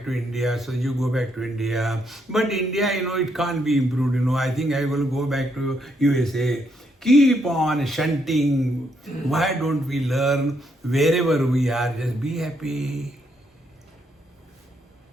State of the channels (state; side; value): normal; both; correlation 0.76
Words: to India, so you go back to India. But India, it can't be improved, I think I will go back to USA. Keep on shunting. Why don't we learn wherever we are, just be happy.